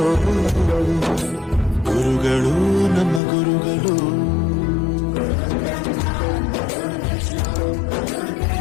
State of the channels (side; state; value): right; drops out; at 3.2 s